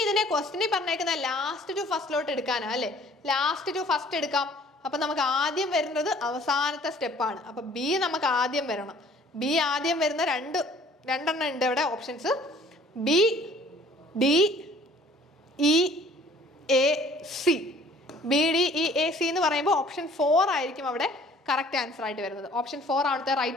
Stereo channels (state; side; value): normal; both; correlation 0.54